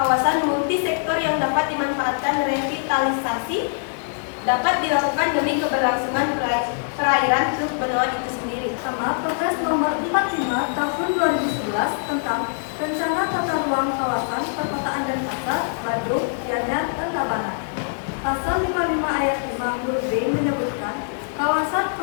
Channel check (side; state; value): right; silent; 63 dB below the other